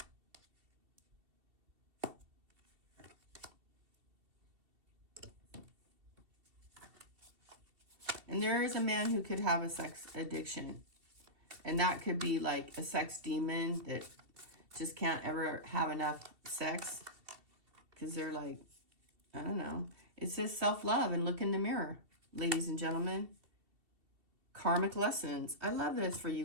And there is a man who could have a sex addiction. And that could be like a sex demon that just can't ever have enough sex. Because they're like, I don't know. It says self-love and look in the mirror, ladies and gentlemen. Karmic lessons. I love this for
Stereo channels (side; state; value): left; late; 2.7 ms